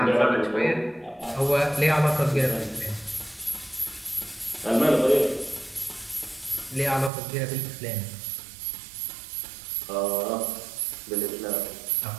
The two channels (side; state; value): left; drops out; at 7.1 s